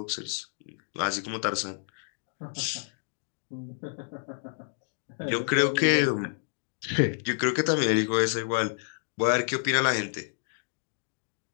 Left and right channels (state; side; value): silent; right; digital silence